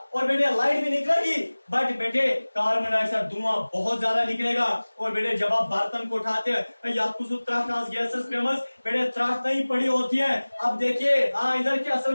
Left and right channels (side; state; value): both; inverted; correlation -1.00